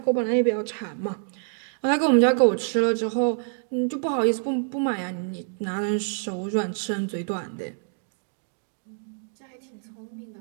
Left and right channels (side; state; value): left; silent; 61 dB below the other